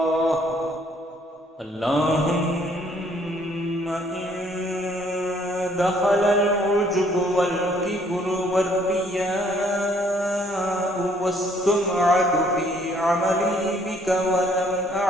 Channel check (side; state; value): both; normal; correlation 0.63